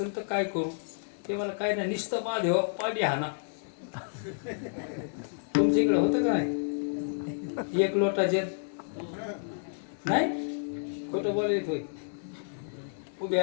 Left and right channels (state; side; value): silent; right; digital silence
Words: तर काय करू? ते मला काय नाही, नुसतं महादेवा पाणी हाना. तुमच्या इकडे होतं का नाही? एक लोटा जल नाही, खोटं बोलत होय.